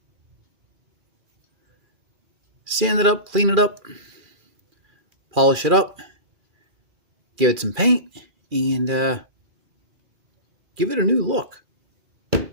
Sand it up, clean it up, polish it up, give it some paint, and give it a new look.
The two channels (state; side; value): late; left; 2.4 ms